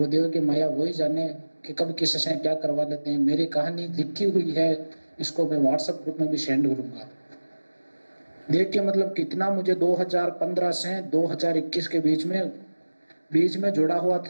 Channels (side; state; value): both; inverted; correlation -1.00